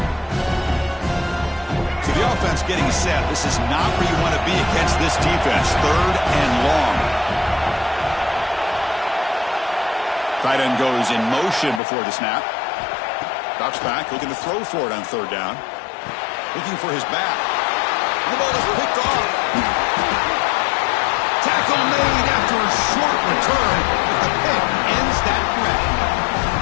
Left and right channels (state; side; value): drops out; right; at 11.8 s